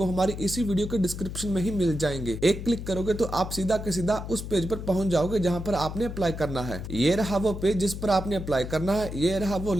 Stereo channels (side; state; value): left; noise; hum, 8 dB below the sound